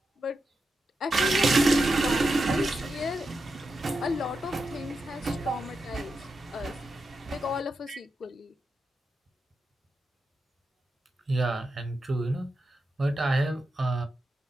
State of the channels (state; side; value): normal; both; correlation 0.88